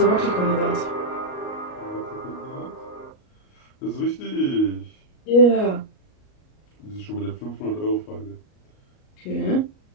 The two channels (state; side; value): late; right; 38 ms